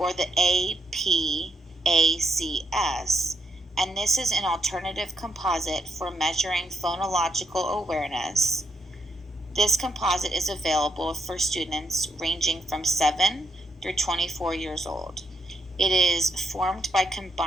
the APACS, and this is an alternative composite for measuring phonological awareness. This composite is available for students ranging from 7 through 24 years old. It is formed by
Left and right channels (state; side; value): normal; both; correlation 0.79